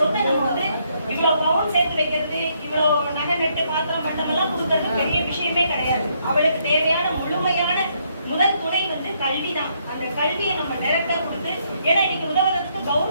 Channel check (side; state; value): both; inverted; correlation -0.72